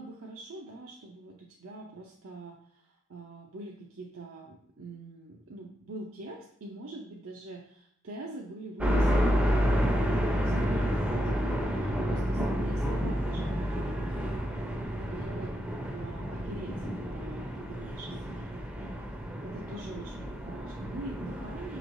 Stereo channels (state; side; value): normal; both; correlation 0.84